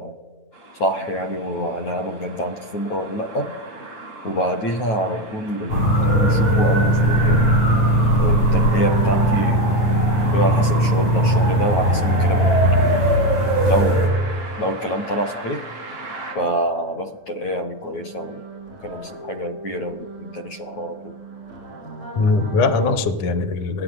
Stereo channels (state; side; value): late; right; 9.3 ms